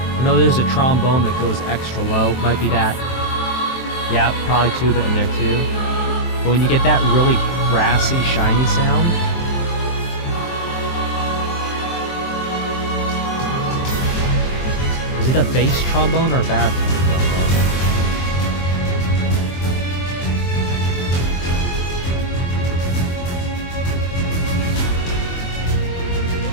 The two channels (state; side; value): late; right; 23 ms